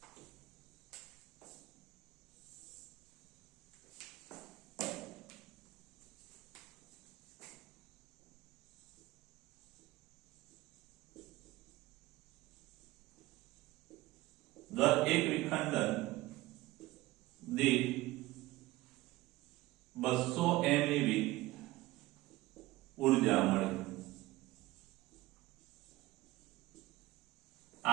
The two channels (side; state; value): left; quieter; 18.5 dB